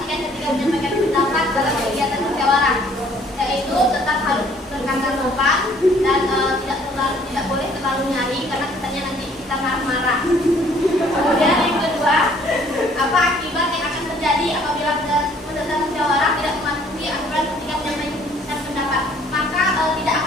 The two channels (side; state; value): both; normal; correlation 0.59